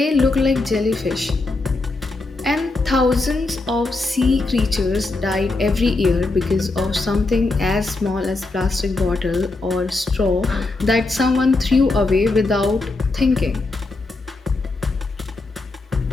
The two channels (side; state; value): right; quieter; 3.3 dB